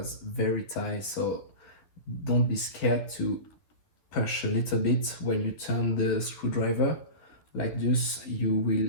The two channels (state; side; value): late; right; 11 ms